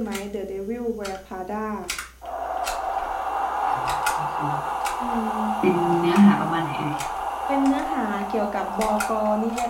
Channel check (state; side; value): identical; both; correlation 1.00